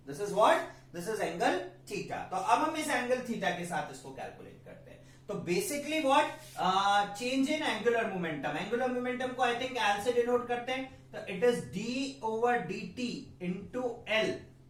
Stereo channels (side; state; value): both; identical; correlation 1.00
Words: This is what, this is angle theta. तो अब हम इस एंगल थीटा के साथ इसको कैलकुलेट करते हैं। तो basically what, change in angular momentum. Angular momentum को आई थिंक एल से डिनोट करते हैं, तो it is D over D T into L,